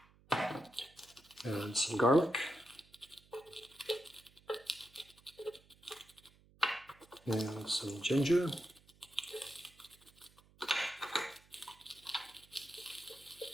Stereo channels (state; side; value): noise; right; hum, 28 dB below the sound